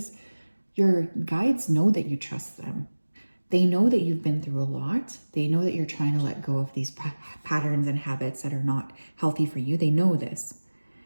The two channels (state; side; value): inverted; both; correlation -1.00